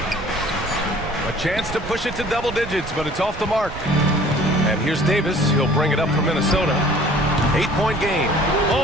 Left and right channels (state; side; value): noise; right; rumble, 11 dB below the sound